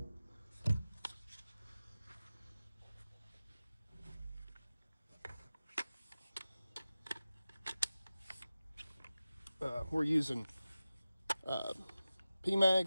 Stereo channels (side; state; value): both; inverted; correlation -0.95